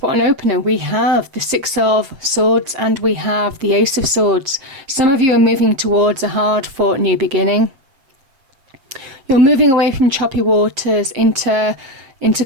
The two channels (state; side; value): late; left; 7.5 ms